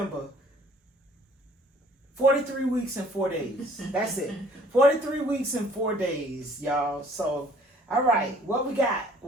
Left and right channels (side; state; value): both; normal; correlation 0.57